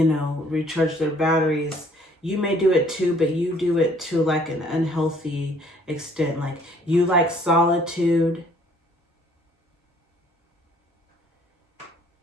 know, recharge their batteries. You may do it too, but you do it to like an unhealthy extent. Like you like solitude.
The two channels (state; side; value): normal; both; correlation 0.60